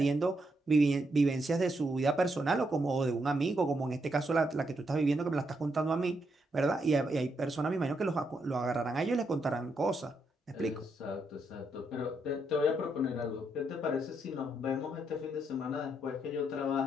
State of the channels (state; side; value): normal; both; correlation 0.79